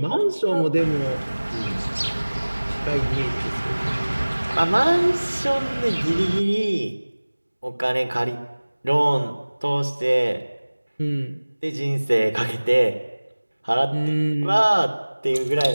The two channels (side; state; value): both; inverted; correlation -1.00